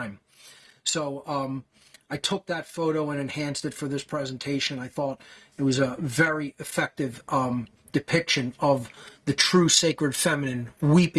So I took that photo and enhanced it for this presentation. I thought it was a very effective depiction of the true sacred feminine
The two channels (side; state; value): both; identical; correlation 1.00